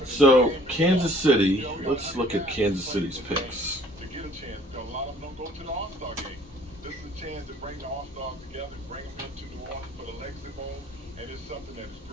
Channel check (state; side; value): normal; both; correlation 0.55